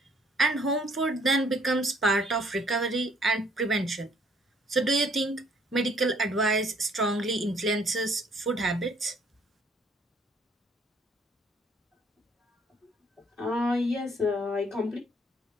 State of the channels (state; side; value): normal; both; correlation 0.63